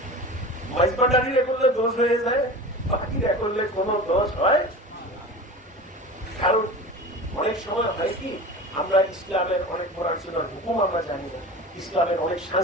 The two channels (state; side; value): normal; both; correlation 0.34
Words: মাইজবান্ডারিরা করলে দোষ হয়ে যায়, বাকিরা করলে কোনো দোষ হয়। কারণ অনেক সময় হয় কি, আমরা ইসলামের অনেক পড়াশোনার হুকুম আমরা জানি না, ইসলামের অনেক